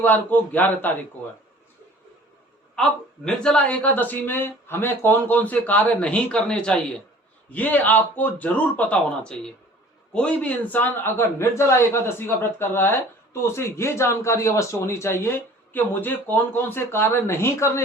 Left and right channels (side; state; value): both; normal; correlation 0.48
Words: को 11 तारीख को है। अब निर्जला एकादशी में हमें कौन कौन से कार्य नहीं करने चाहिए ये आपको जरूर पता होना चाहिए। कोई भी इंसान अगर निर्जला एकादशी का व्रत कर रहा है तो उसे ये जानकारी अवश्य होनी चाहिए कि मुझे कौन कौन से कार्य नहीं